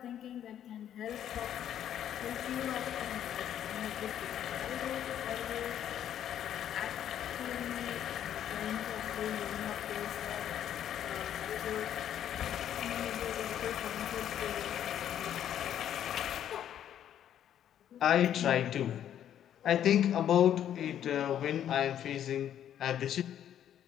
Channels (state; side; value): quieter; right; 10.3 dB